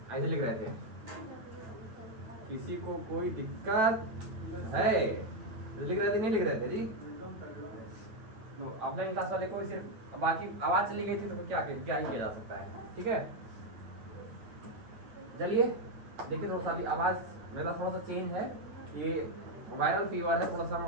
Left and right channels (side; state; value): left; late; 9.1 ms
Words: ऐसे लिख रहे थे किसी को कोई दिक्कत है, लिख रहे थे नहीं लिख रहे थे जी। ऑफलाइन क्लास वाले को सिर्फ बाकी आवाज़ चली गई थी तो क्या ही किया जा सकता है, ठीक है। चलिए देखिए, थोड़ा सा अभी आवाज़ मेरा थोड़ा सा चेंज है, ये वायरल फीवर है, थोड़ा सा